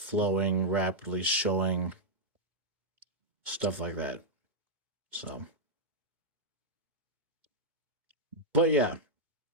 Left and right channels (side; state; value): left; late; 2.1 ms